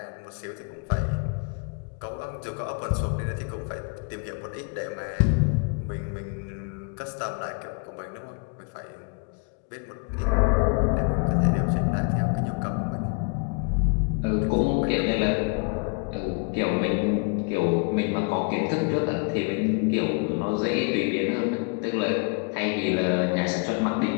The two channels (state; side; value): quieter; right; 36.1 dB